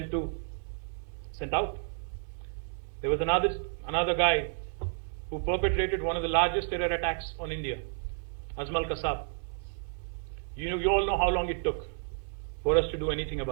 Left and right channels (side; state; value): left; silent; 57 dB below the other